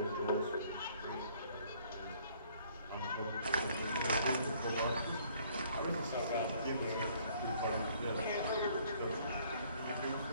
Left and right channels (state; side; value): inverted; both; correlation -0.60